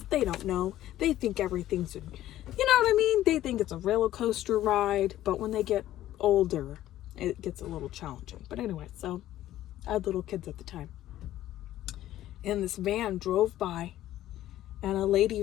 they don't know. They think everything's, you know what I mean? They think it's a roller coaster ride, but when they get older, it gets a little challenging. But anyway, so I had little kids at the time. And this van drove by, and a lady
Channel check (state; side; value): quieter; right; 13.6 dB